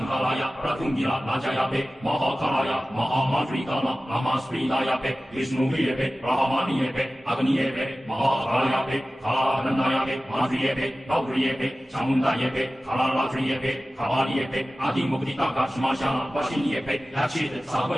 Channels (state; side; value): normal; both; correlation 0.96